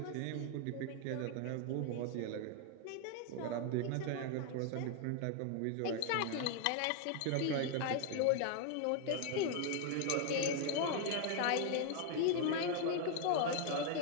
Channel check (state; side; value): different; both; correlation 0.00